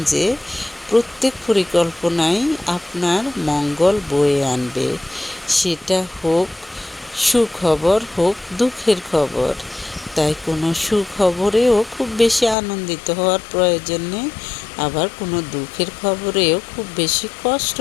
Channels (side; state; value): right; drops out; at 12.6 s